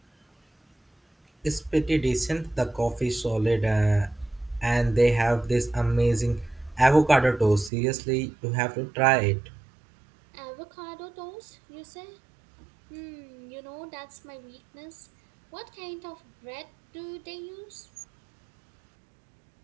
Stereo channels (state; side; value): drops out; left; at 7.7 s